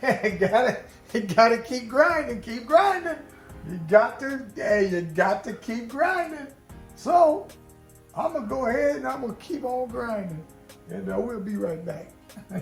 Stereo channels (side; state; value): both; identical; correlation 1.00